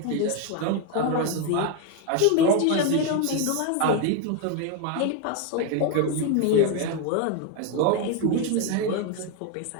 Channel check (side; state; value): both; different; correlation 0.01